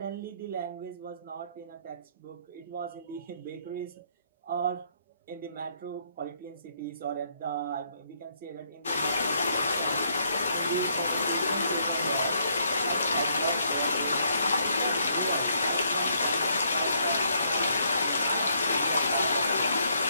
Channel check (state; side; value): inverted; both; correlation -0.70